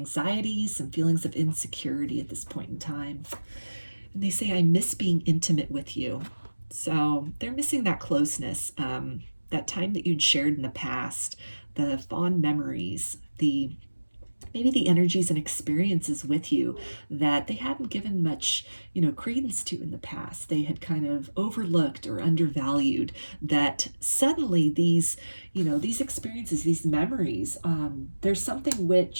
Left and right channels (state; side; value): inverted; both; correlation -1.00